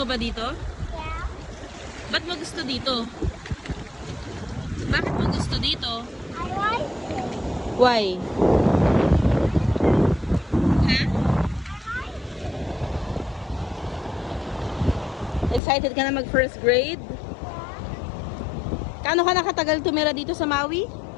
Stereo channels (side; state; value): right; drops out; at 15.6 s